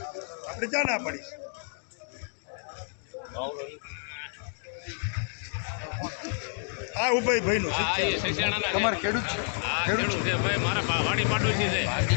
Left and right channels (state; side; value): silent; right; digital silence